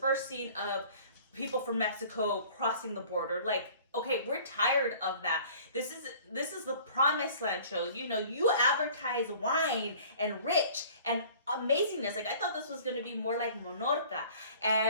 scene of people from Mexico crossing the border. Like, okay, we're tired of that. This is the Promised Land show. You know, you advertise wine and rich and amazingness. Like, I thought this was going to be more like Monorca,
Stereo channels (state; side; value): inverted; both; correlation -0.49